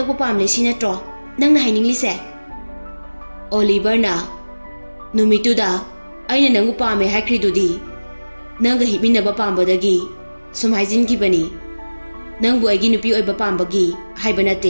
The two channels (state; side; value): inverted; both; correlation -1.00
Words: pamle sinatro nangna haininglise. Oliver na numituda aina nangu pame haikridudi nanga himinaba pambadagi sum haijingibani nangbu aigi nupi oiba pambagi haiba